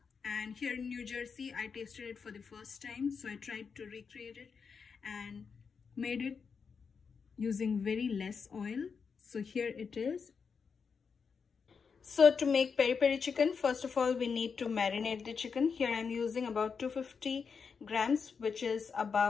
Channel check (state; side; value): quieter; right; 5.8 dB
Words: and here in New Jersey I tasted it for the first time, so I tried to recreate it and made it using very less oil. So here it is. So to make peri peri chicken, first of all we need to marinate the chicken. Here I'm using about 250 grams, which is